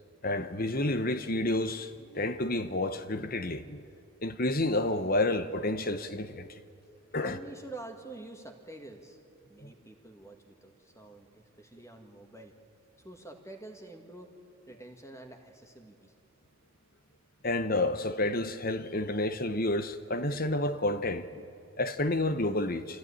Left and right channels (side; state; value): both; normal; correlation 0.16